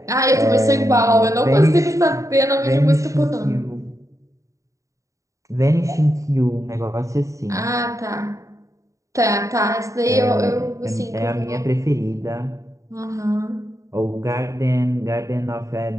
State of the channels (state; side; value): late; left; 0.16 ms